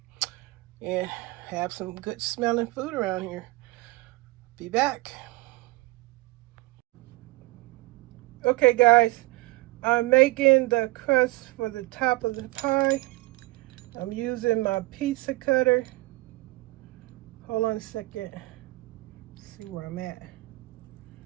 and have some good smelling food around here. Be back. Okay, guys, I'm making the crust for the top of the pie. I'm using my pizza cutter. Hold on a second. Let's see where I'm at.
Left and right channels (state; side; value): quieter; left; 21.4 dB